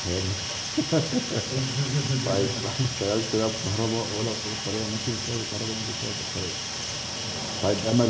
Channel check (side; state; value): both; identical; correlation 1.00